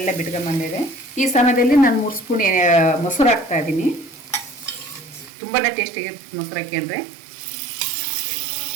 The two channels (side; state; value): left; drops out; at 5.3 s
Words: ಬಿಟ್ಕೊಂಡ್ಬಂದಿದೆ. ಈ ಸಮಯದಲ್ಲಿ ನಾನು 3 ಸ್ಪೂನ್ ಮೊಸರು ಹಾಕ್ತಾ ಇದ್ದೀನಿ. ತುಂಬಾ ಟೇಸ್ಟಿಯಾಗಿರುತ್ತೆ ಮೊಸರು ಹಾಕ್ಕೊಂಡ್ರೆ.